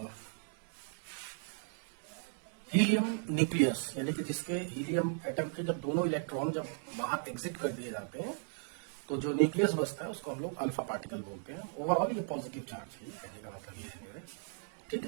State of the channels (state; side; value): silent; left; 53 dB below the other